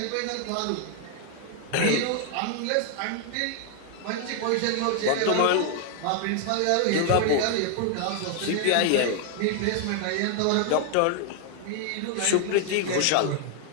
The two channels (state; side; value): different; both; correlation 0.00